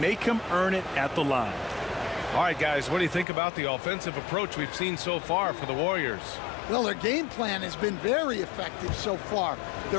him earn it at the line. All right, guys, what do you think about the offensive approach we've seen so far for the Warriors? Well, their game plan has been very effective so far.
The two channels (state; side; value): drops out; right; at 3.2 s